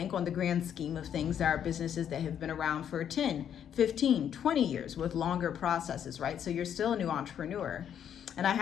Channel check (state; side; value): quieter; right; 9.1 dB